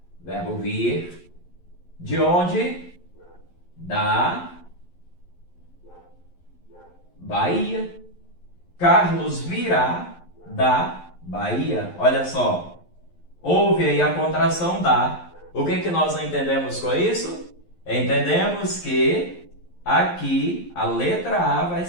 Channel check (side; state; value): right; late; 11 ms